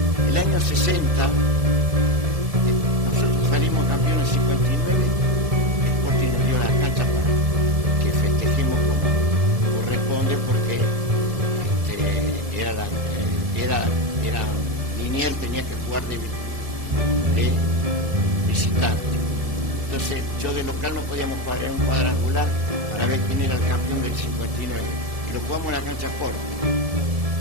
En el año 60, nosotros salimos campeones 59, Sporting nos dio la cancha para que festejemos como corresponde, porque Liniers tenía que jugar de visitante. Entonces yo de local no podíamos jugar, era un cuadrangular para ver quién era el campeón del 59. Y lo jugamos en la cancha Sporting.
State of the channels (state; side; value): late; left; 1.7 ms